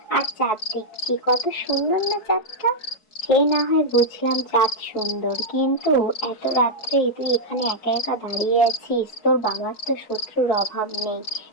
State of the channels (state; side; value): late; right; 4.7 ms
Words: আর চাঁদ দেখছি। কত সুন্দর না চাঁদটা! সে না হয় বুঝলাম চাঁদ সুন্দর, কিন্তু এত রাত্রে তুই এখানে একা একা দাঁড়িয়ে আছিস, তোর বাবার তো শত্রুর অভাব নেই।